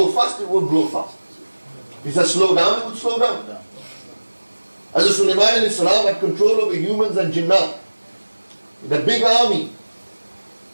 fast, it would blow fast. If he said slow down, it would slow down. Hazrat Sulaiman alayhi salam had control over humans and jinnat. The big army.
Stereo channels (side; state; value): both; inverted; correlation -1.00